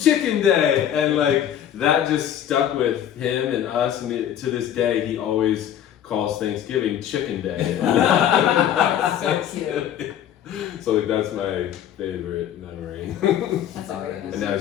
chicken day." And like, that just stuck with him and us, and to this day, he always calls Thanksgiving chicken day. That's so cute. So like, that's my favorite memory. That's a great. And now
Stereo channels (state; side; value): quieter; right; 10.3 dB